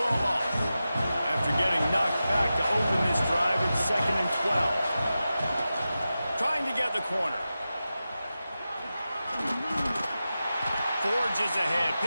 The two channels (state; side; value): inverted; both; correlation -0.93